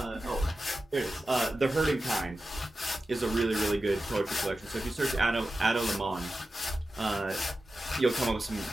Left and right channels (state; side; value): normal; both; correlation 0.93